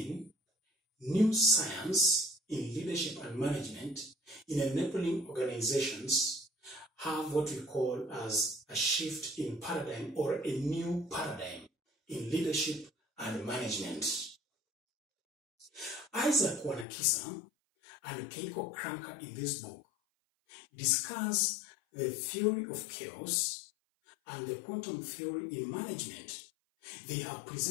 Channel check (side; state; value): right; drops out; at 16.9 s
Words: new science in leadership and management in enabling organizations have what we call as a shift in paradigm or a new paradigm in leadership and management. Isaac Wanakisa and Keiko Kranker in this book discuss the theory of chaos and the quantum theory in management. They have